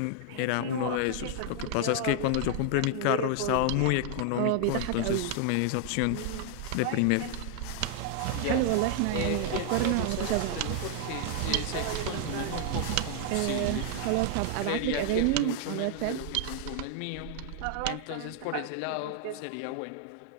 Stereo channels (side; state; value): both; different; correlation 0.00